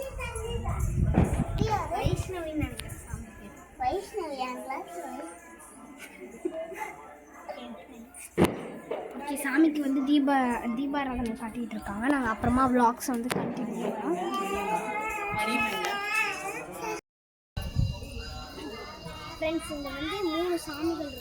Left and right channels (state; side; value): identical; both; correlation 1.00